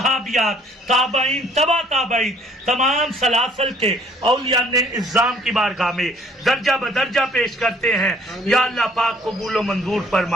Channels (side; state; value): both; normal; correlation 0.59